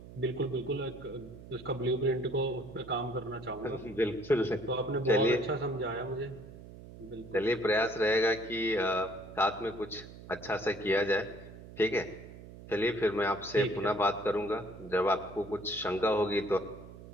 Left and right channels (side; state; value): right; noise; hum, 16 dB below the sound